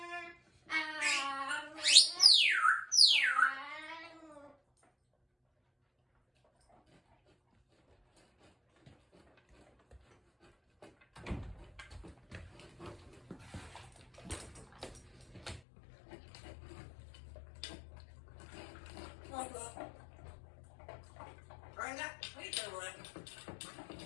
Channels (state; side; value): drops out; right; at 15.6 s